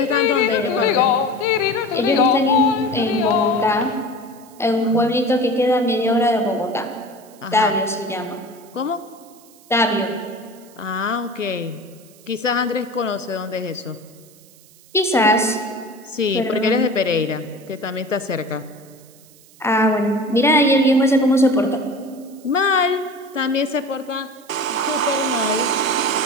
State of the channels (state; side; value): noise; right; hiss, 26 dB below the sound